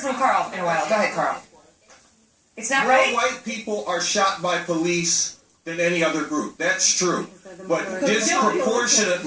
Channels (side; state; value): both; identical; correlation 1.00